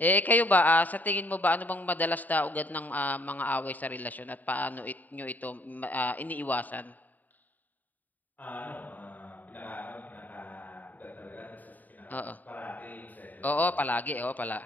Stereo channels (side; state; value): right; late; 0.083 ms